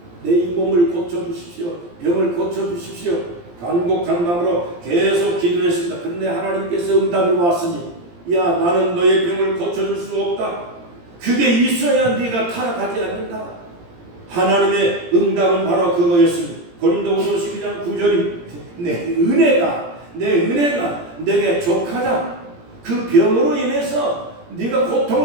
내 이 몸을 고쳐주십시오. 병을 고쳐주십시오. 간곡한 마음으로 계속 기도했습니다. 그런데 하나님께서 응답이 왔으니, 야, 나는 너의 병을 고쳐줄 수 없다. 그게 있어야 네가 타락하지 않는다. 하나님의 응답은 바로 그거였습니다. 고린도후서 12장 9절이 내 은혜가 내게 족하다. 그 병으로 인해서 네가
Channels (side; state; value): left; late; 17 ms